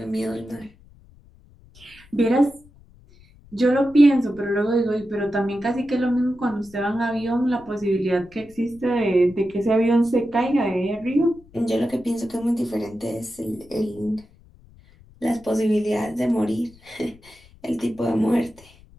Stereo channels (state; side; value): noise; left; rumble, 26 dB below the sound